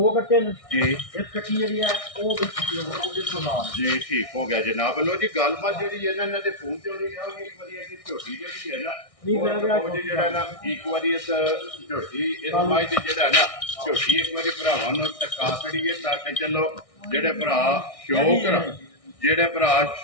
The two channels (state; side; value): late; right; 1.6 ms